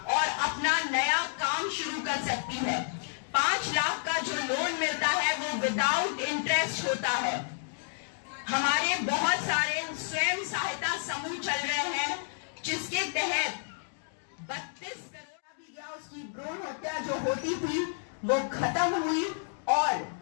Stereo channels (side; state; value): right; silent; digital silence